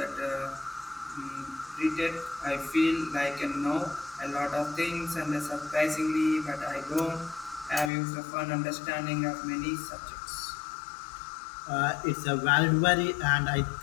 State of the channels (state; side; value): drops out; right; at 7.9 s